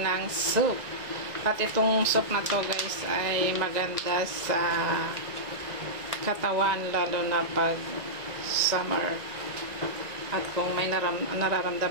soup. At itong soup na to guys ay maganda sa katawan, lalo na pag summer. At kung may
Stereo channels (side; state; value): left; late; 1.9 ms